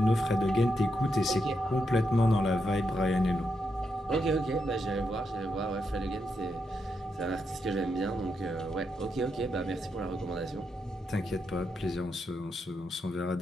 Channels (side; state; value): both; normal; correlation 0.82